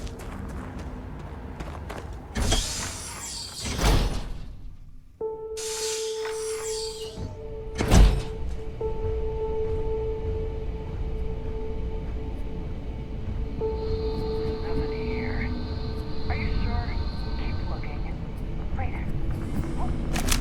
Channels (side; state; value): both; identical; correlation 1.00